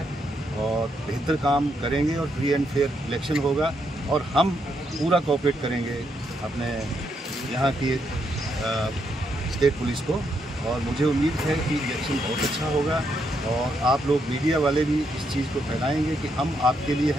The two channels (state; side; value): normal; both; correlation 0.78